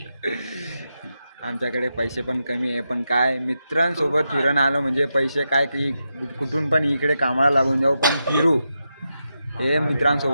आमच्याकडे पैसे पण कमी आहे, पण काय मित्रांसोबत फिरून आलो म्हणजे पैसे काय की कुठून पण इकडे कामाला लागून जाऊ पण फिरू. हे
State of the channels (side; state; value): both; inverted; correlation -0.87